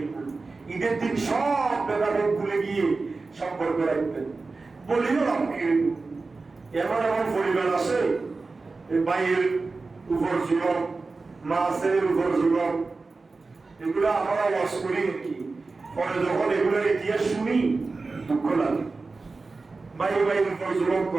ঈদের দিন সব ব্যাপারে ভুলে গিয়ে সম্পর্ক রাখবেন। বলিও আমাকে এমন এমন পরিবার আছে, ভাইয়ের উপর জুলম, মাছের উপর জুলম, এগুলো আমরা ওয়াজ করি কি, পরে যখন এগুলোর ইতিহাস শুনি দুঃখ লাগে। ভাইয়ের উপর জুলম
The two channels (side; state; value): left; quieter; 3.8 dB